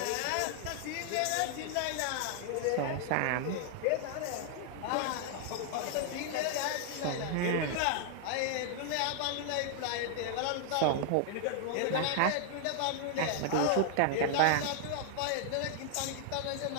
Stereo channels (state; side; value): different; both; correlation 0.00